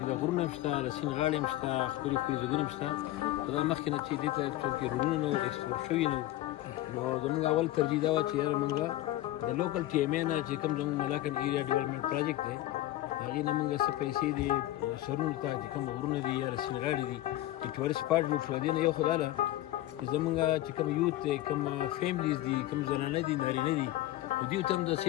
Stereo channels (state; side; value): quieter; right; 15.3 dB